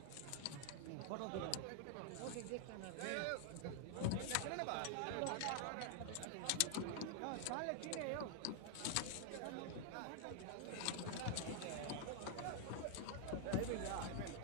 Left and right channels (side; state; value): both; different; correlation 0.00